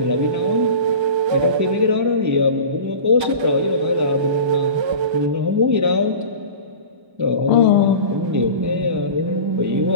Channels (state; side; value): late; left; 1.2 ms